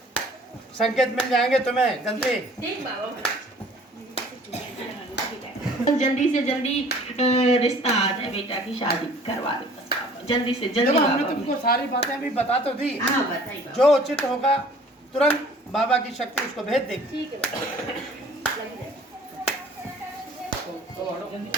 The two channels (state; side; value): normal; both; correlation 0.52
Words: संकेत मिल जाएंगे तुम्हें जल्दी। ठीक बाबा महाराज। जल्दी से जल्दी रिश्ता आ जाए, बेटा की शादी करवा दो बस बाबा, जल्दी से जल्दी। देखो हमने बाबा तुमको सारी बातें अभी बता तो दी, हाँ बताइए बाबा। जो उचित होगा तुरंत बाबा की शक्ति उसको भेज देगी। ठीक है बाबा, लग जाए।